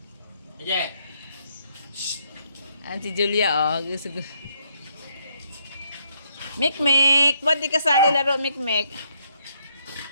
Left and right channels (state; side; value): inverted; both; correlation -0.72